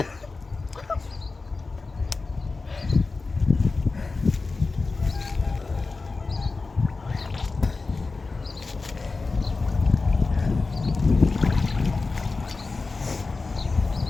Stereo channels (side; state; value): right; quieter; 3.9 dB